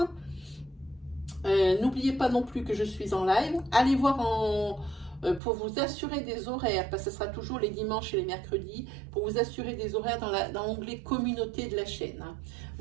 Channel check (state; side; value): drops out; left; at 5.4 s